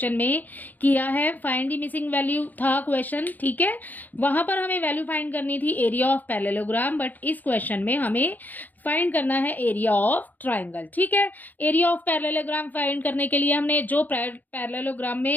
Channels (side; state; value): right; late; 0.084 ms